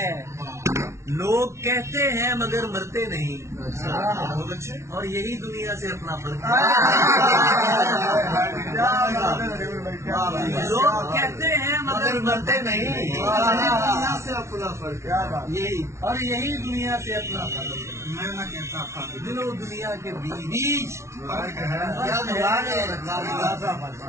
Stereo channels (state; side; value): late; left; 0.13 ms